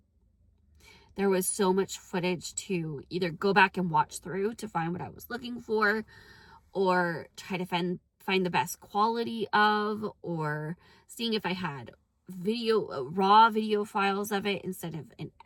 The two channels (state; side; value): identical; both; correlation 1.00